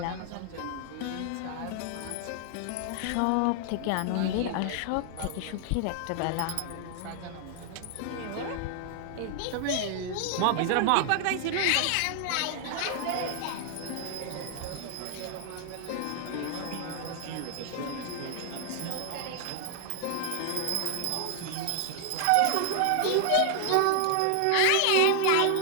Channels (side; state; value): both; different; correlation 0.00